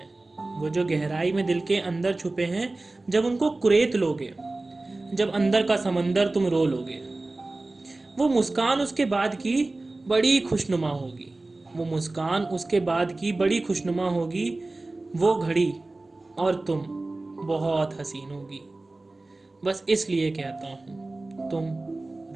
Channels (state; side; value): quieter; left; 3.0 dB